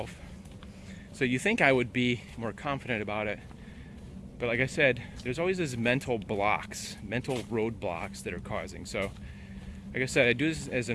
So you think I would be more confident about it. But like I said, there's always these mental roadblocks that are causing. So like I said, I do this as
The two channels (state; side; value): identical; both; correlation 1.00